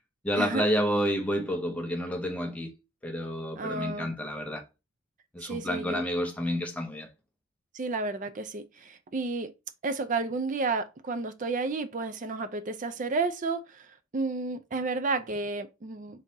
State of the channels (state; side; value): normal; both; correlation 0.43